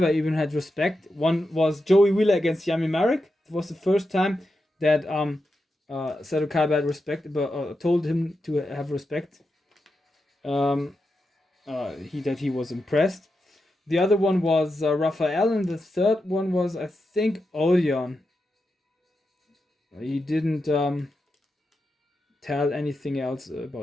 even had respect. One was Joey Wheeler against Yami Marek. It was the first time that Seto Kaiba had respect, but told him to have respect. He was impressed. The other one was Raphael, and the third one was, I think, Odeon. He didn't tell anything else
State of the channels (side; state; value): both; normal; correlation 0.88